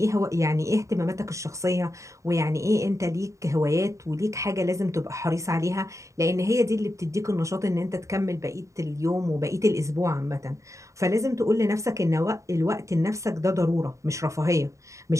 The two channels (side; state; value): left; late; 0.15 ms